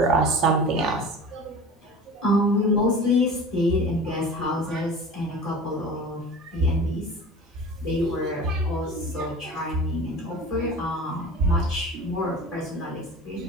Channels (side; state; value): both; normal; correlation 0.37